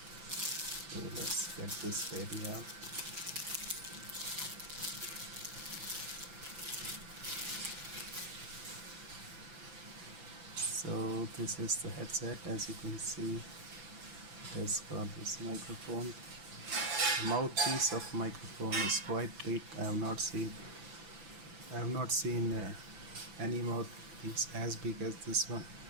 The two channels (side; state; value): left; late; 6.0 ms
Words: So let's get this baby out. So this is the headset. As you can see, it has got this microphone. The mouthpiece of microphone is quite big. I have not seen any mouthpiece as big as this one.